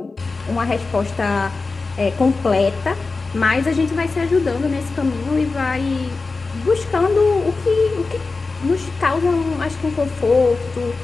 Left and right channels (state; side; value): quieter; right; 3.9 dB